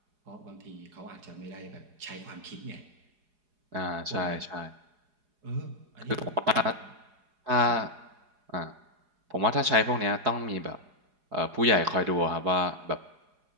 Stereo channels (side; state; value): left; late; 4.8 ms